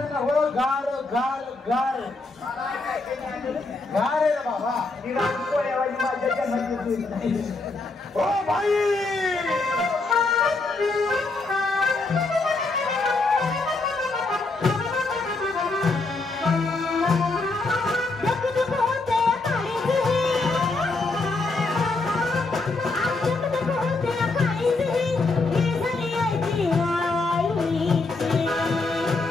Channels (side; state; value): right; quieter; 3.5 dB